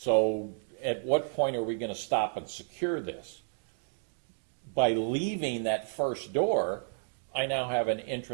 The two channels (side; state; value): left; silent; digital silence